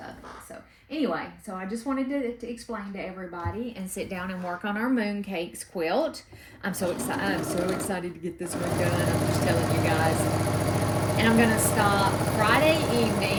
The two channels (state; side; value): identical; both; correlation 1.00